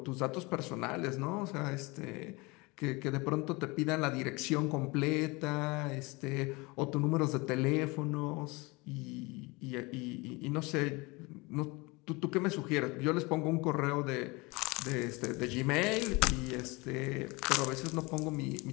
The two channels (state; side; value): quieter; right; 25.4 dB